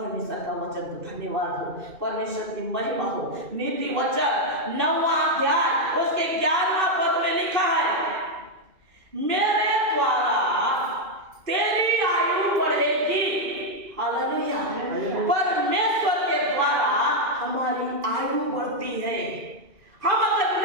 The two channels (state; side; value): late; left; 2.6 ms